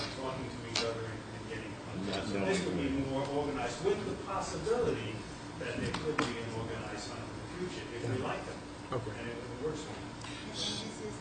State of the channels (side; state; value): both; identical; correlation 1.00